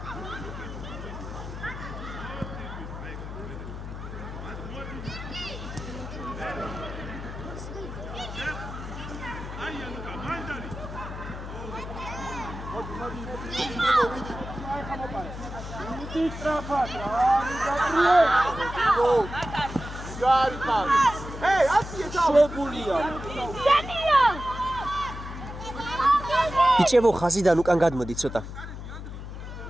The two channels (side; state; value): left; noise; hum, 9 dB below the sound